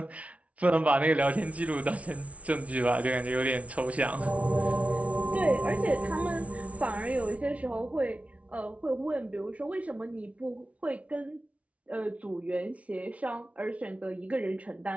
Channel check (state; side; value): late; left; 0.065 ms